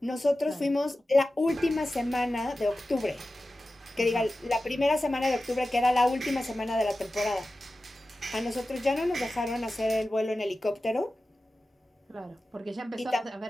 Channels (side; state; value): both; normal; correlation 0.94